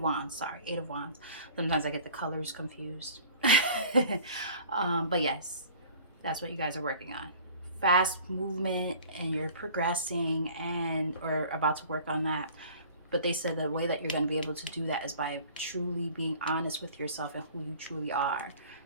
Wands, sorry, Eight of Wands. Sometimes I get the colors confused. But yes, that's what you guys are working on. Fast movement, and you're progressing and or about to work on that. But they said the way that you're going to be able to do that is by truly being honest with yourself and who you truly are,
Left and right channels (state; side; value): inverted; both; correlation -0.47